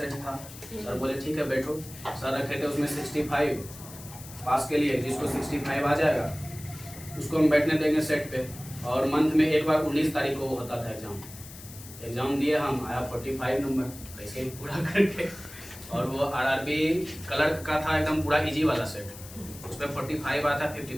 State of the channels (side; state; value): left; noise; hiss, 16 dB below the sound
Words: था। सर बोले ठीक है बैठो। सर रखे थे उसमें 65 पास के लिए, जिसको 65 आ जाएगा उसको हम बैठने देंगे सेट पे। और मंथ में एक बार 19 तारीख को होता था एग्ज़ाम दिए हम, आया 45 नंबर ऐसे ही पूरा करके। और वो आरआरबी क्लर्क का था एकदम पूरा इजी वाला सेट, उसमें 45 आया था